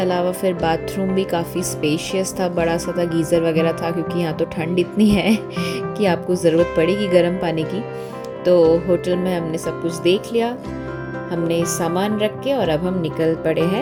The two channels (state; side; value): identical; both; correlation 1.00